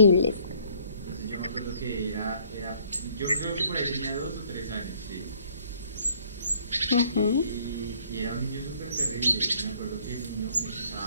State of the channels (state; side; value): inverted; both; correlation -0.61